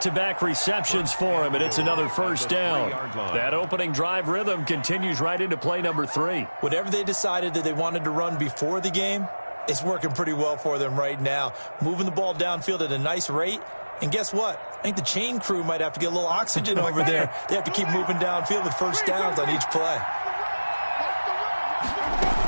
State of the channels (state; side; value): inverted; both; correlation -1.00